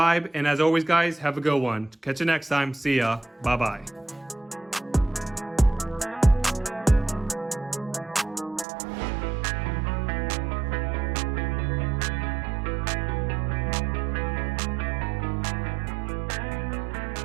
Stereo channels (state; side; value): drops out; left; at 8.7 s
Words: And as always, guys, have a good one. Catch you next time. See ya. Bye-bye.